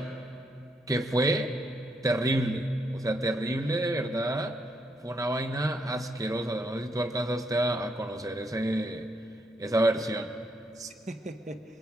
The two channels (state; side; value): normal; both; correlation 0.76